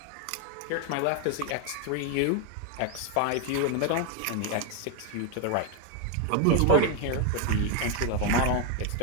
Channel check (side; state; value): both; different; correlation 0.01